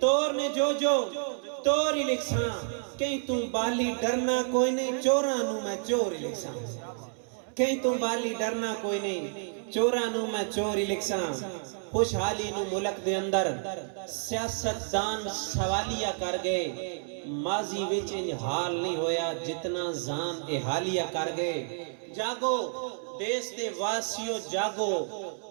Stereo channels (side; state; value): left; silent; 58 dB below the other